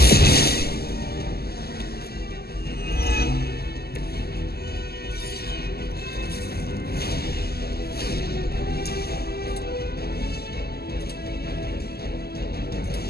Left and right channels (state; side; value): late; right; 0.46 ms